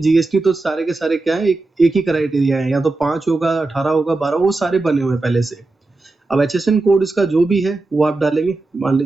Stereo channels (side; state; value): left; quieter; 3.2 dB